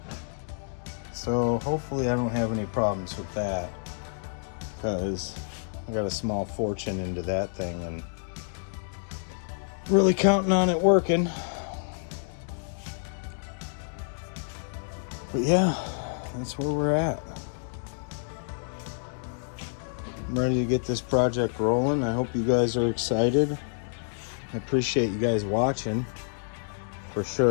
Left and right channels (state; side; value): silent; right; digital silence